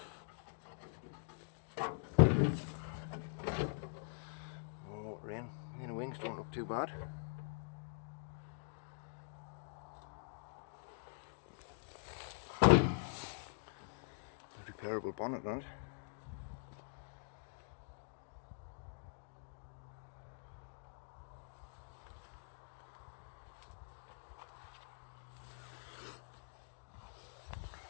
No motor in. The inner wings don't look too bad. Repairable bonnet on it.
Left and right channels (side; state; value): right; silent; digital silence